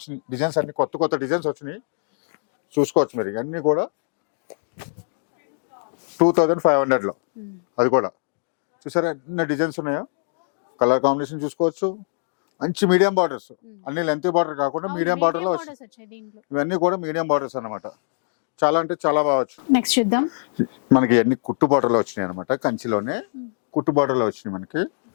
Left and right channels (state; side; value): silent; right; digital silence